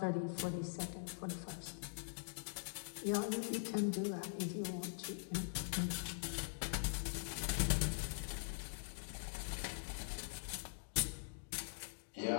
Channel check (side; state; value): right; silent; digital silence